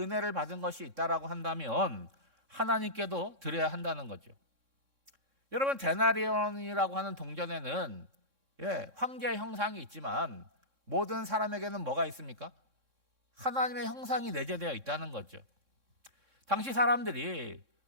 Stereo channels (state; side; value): late; left; 3.6 ms